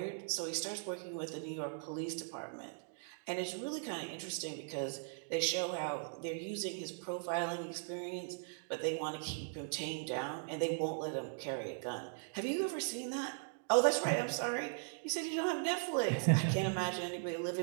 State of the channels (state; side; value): silent; left; digital silence